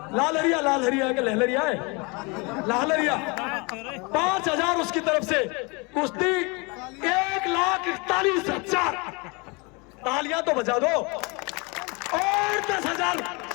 लालहरिया के लहलरिया है, लालहरिया 5000 उसकी तरफ से कुश्ती, 1,41,000। तालियां तो बजा दो। और 10,000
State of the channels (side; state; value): right; quieter; 29.0 dB